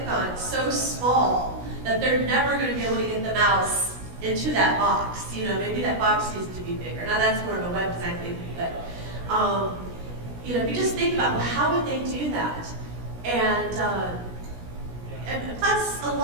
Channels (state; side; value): late; left; 17 ms